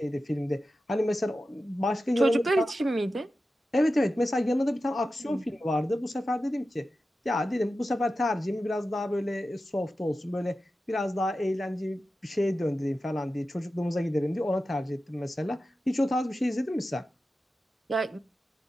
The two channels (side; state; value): both; normal; correlation 0.93